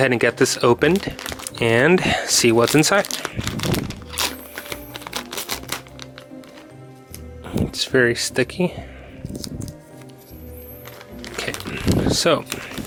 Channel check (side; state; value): both; identical; correlation 1.00